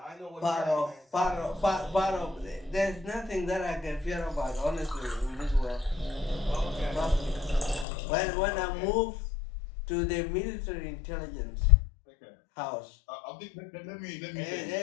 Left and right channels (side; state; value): right; drops out; at 7.9 s